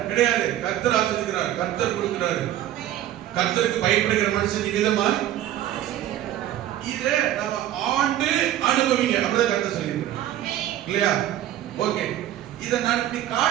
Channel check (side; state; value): left; quieter; 12.6 dB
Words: கிடையாது. கர்த்தர் ஆசீர்வதிக்கிறார், கர்த்தர் கொடுக்கிறாரு. கர்த்தருக்கு பயப்படுகிற மனுஷன் விதமா இதை நம்ம ஆண்டு அனுபவிங்க, அப்படிதான் கர்த்தர் சொல்லியிருக்கிறார் இல்லையா. ஓகே, இதை நான் இப்படி